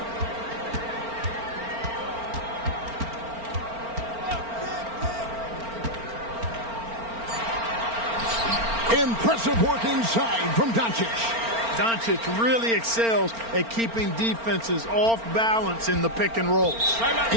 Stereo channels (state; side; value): late; left; 4.4 ms